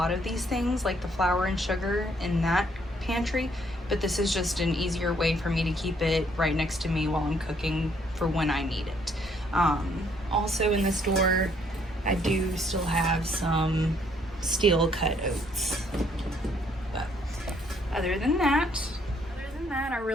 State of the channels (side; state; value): both; normal; correlation 0.67